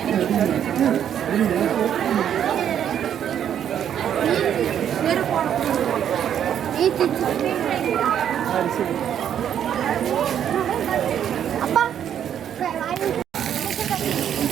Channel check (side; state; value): left; quieter; 9.5 dB